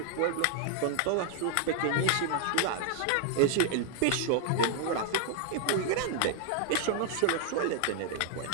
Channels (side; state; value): both; different; correlation 0.00